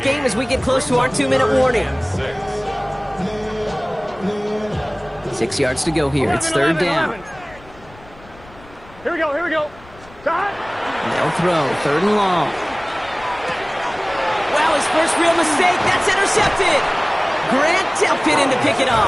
game as we get close to our 2-minute warning. 6 yards to go here. It's 3rd down. Here we go. They'll throw 3rd and long. Wow, his first real mistake. That's intercepted. Grant Delpit in to pick it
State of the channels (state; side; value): noise; left; rumble, 23 dB below the sound